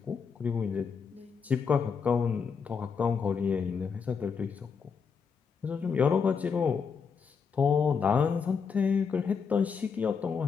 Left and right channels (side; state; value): right; quieter; 5.9 dB